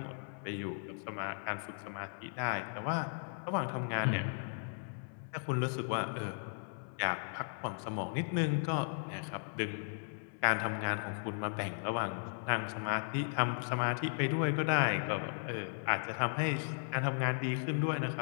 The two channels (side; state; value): right; silent; digital silence